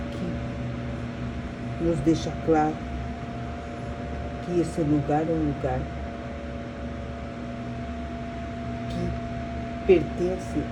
nos deixa claro que esse lugar é um lugar que pertence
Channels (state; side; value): identical; both; correlation 1.00